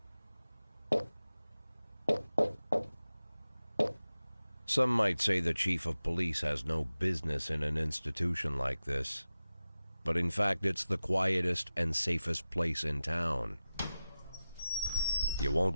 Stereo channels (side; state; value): both; inverted; correlation -0.95